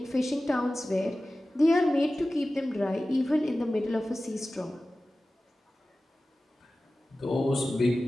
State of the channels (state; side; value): normal; both; correlation 0.96